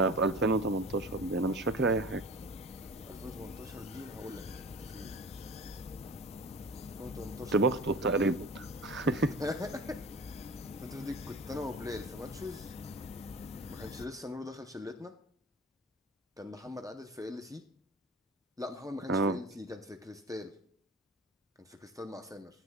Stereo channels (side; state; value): both; normal; correlation 0.38